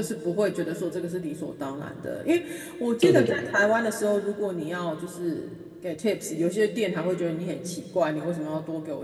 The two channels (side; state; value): both; identical; correlation 1.00